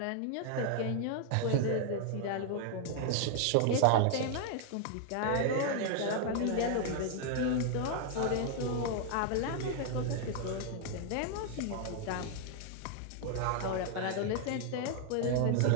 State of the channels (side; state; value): both; different; correlation 0.00